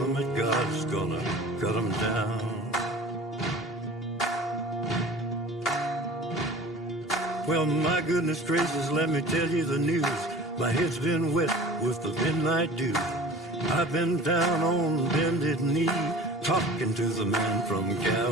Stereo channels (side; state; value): both; normal; correlation 0.41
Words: that God's gonna cut him down. Well, my goodness gracious, let me tell you the news. My head's been wet with the midnight dew. I've been down on bended knee, talking to the man from